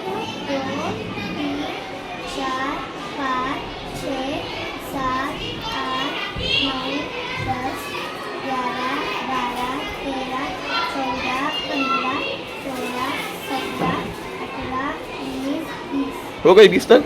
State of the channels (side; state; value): both; identical; correlation 1.00